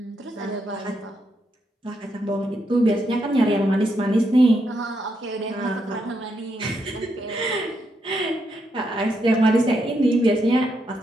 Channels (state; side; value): normal; both; correlation 0.80